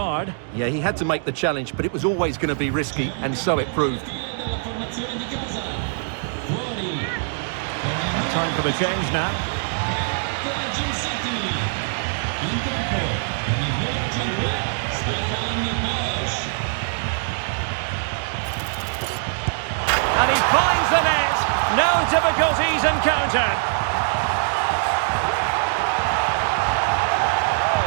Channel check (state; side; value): silent; left; digital silence